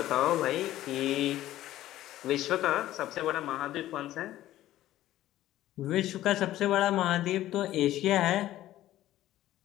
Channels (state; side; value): quieter; right; 14.2 dB